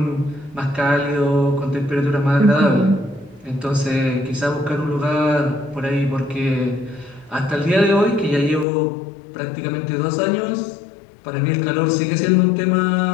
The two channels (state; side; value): drops out; right; at 8.7 s